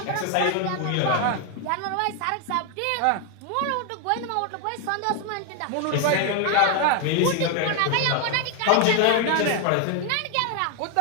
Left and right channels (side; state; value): both; different; correlation 0.01